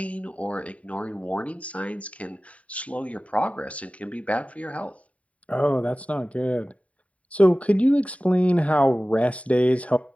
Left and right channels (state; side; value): late; right; 0.066 ms